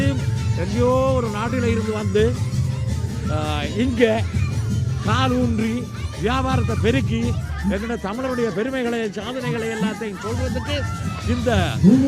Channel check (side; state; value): both; identical; correlation 1.00